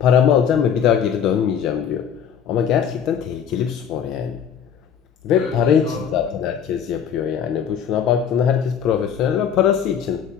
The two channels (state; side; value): quieter; right; 8.0 dB